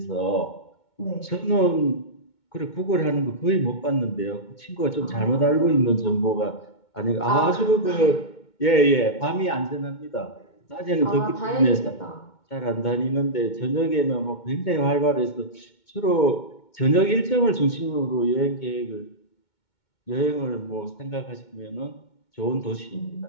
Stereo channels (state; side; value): late; right; 2.2 ms